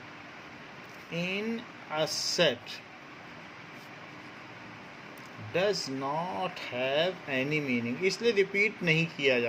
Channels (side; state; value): both; identical; correlation 1.00